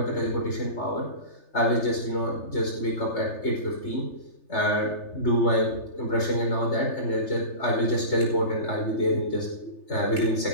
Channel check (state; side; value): late; right; 3.3 ms